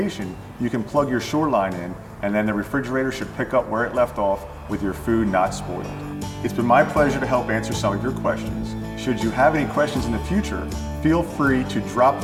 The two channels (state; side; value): identical; both; correlation 1.00